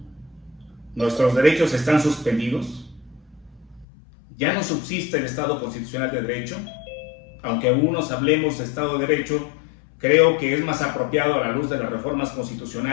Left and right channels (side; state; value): right; drops out; at 3.9 s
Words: nuestros derechos están suspendidos. Ya no subsiste el Estado constitucional de derecho. Aunque algunos hablemos de Estado de Derecho, creo que es más apropiado a la luz de las reformas